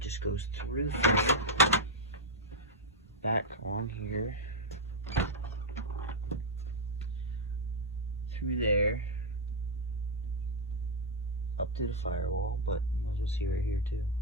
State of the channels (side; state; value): both; normal; correlation -0.01